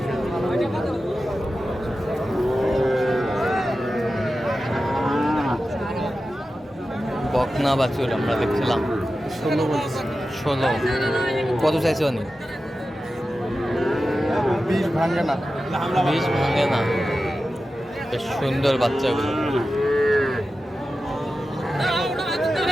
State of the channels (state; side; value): normal; both; correlation 0.93